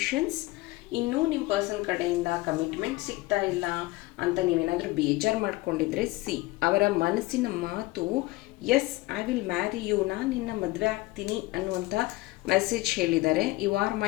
ಇನ್ನೂ ನಿಮ್ಮ ಪರ್ಸನ್ ಕಡೆಯಿಂದ ಕಮಿಟ್ಮೆಂಟ್ ಸಿಗ್ತಾ ಇಲ್ಲ ಅಂತ ನೀವೇನಾದರೂ ಬೇಜಾರು ಮಾಡ್ಕೊಂಡಿದ್ರೆ, ಅವರ ಮನಸ್ಸಿನ ಮಾತು yes, I will marry you, ನಾನು ನಿನ್ನ ಮದುವೆ ಆಗ್ತೀನಿ ಅನ್ನುವಂಥ ಮೆಸೇಜ್ ಹೇಳಿದ್ದಾರೆ. You are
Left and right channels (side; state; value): right; quieter; 20.0 dB